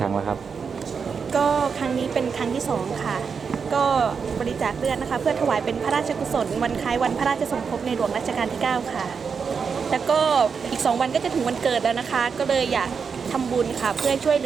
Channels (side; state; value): left; quieter; 5.9 dB